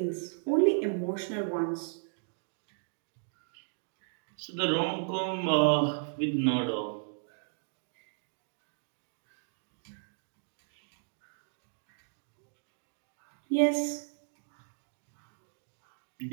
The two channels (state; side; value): silent; left; digital silence